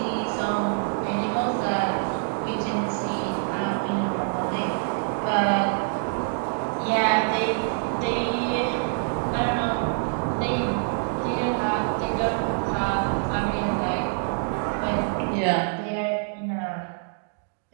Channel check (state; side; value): silent; left; digital silence